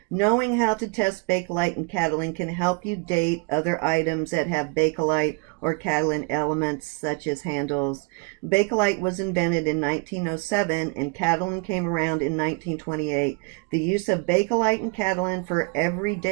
Knowing how to test Bakelite and Catalan can help you date other items that have Bakelite or Catalan elements, such as handles. Bakelite was invented in 1907 and Catalan came around in 1928. The use of Bakelite and Catalan for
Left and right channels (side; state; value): left; quieter; 30.7 dB